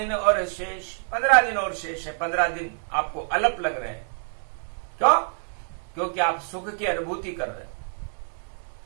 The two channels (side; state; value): left; silent; digital silence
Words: और शेष, 15 दिन और शेष है। 15 दिन आपको अल्प लग रहे हैं। क्यों? क्योंकि आप सुख की अनुभूति कर रहे हैं।